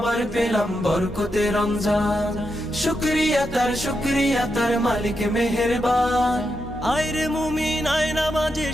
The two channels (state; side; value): normal; both; correlation 0.85